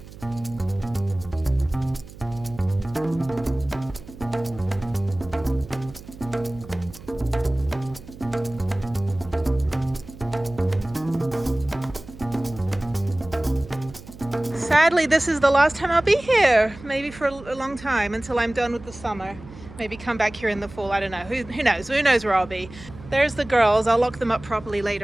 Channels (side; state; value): right; noise; hum, 17 dB below the sound